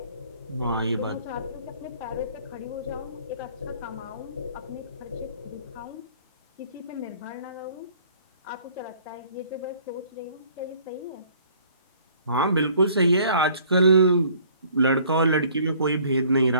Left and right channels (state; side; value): inverted; both; correlation -0.56